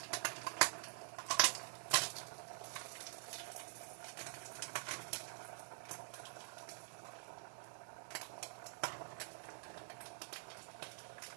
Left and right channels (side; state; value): left; silent; digital silence